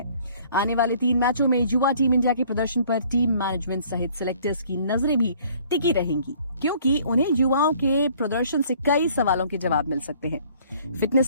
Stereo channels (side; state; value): both; inverted; correlation -0.56